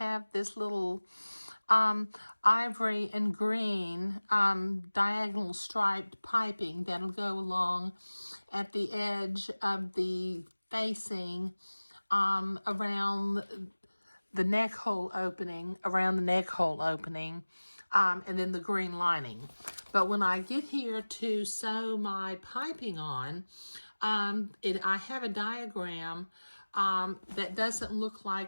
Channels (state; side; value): inverted; both; correlation -1.00